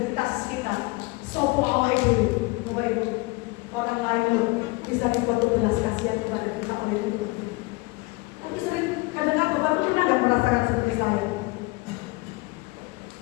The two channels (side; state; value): right; quieter; 24.5 dB